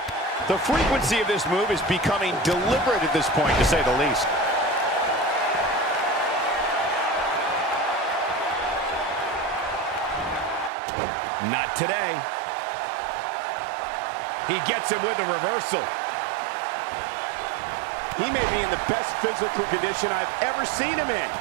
The frequency of this move is becoming deliberate at this point, to say the least. Not today. He gets him with a reversal. He may be in the best physical condition I've ever seen him in.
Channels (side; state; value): left; drops out; at 10.7 s